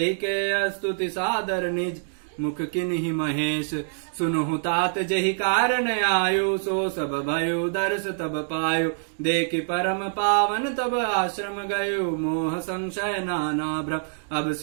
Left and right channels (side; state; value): left; silent; digital silence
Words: के स्तुति सादर निज मुख किन्हि महेश। सुनहु तात जहि कारण आयु सो सब भयो दर्श तब पायो। देखि परम पावन तब आश्रम गयो मोह संशय नाना भ्रम। अब